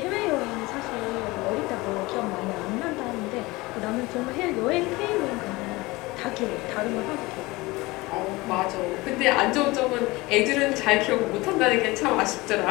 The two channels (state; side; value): quieter; right; 21.9 dB